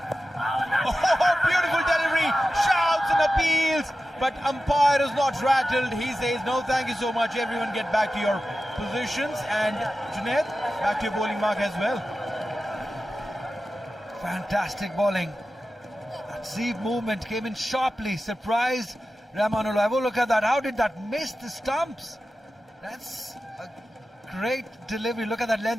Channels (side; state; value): both; normal; correlation 0.93